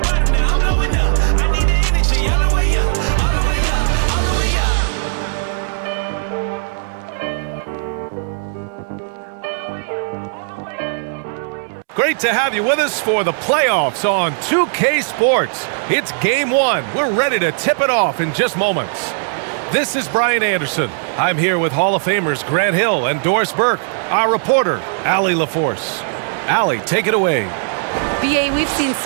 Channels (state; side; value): silent; left; digital silence